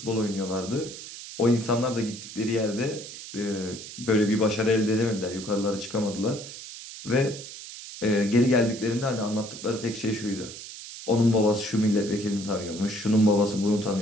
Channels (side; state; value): right; noise; hiss, 12 dB below the sound